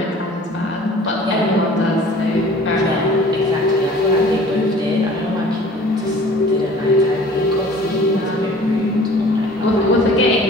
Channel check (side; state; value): both; normal; correlation 0.48